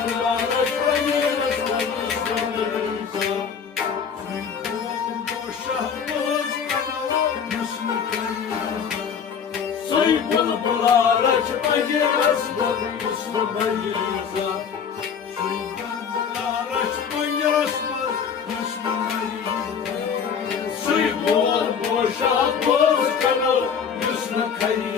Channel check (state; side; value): quieter; right; 6.9 dB